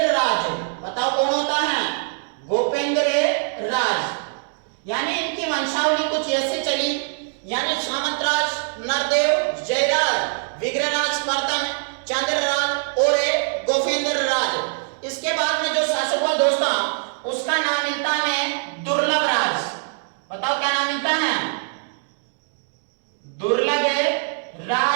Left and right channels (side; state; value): left; silent; 61 dB below the other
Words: राज। बताओ कौन होता है? गोपेंद्र राज। यानी इनकी वंशावली कुछ ऐसे चली, यानी सामंतराज, नरदेव, जयराज, विग्रहराज प्रथम, चंद्रराज और गोपेंद्र राज। इसके बाद में जो शासक हुआ दोस्तों, उसका नाम मिलता है दुर्लभ राज। बताओ क्या नाम मिलता है? दुर्लभ